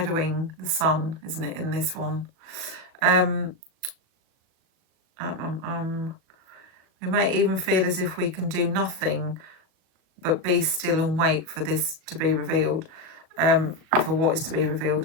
the sun, isn't it, in this one? We may even feel as if we can do nothing but be still and wait for this to be revealed, for what is to be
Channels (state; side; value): late; left; 37 ms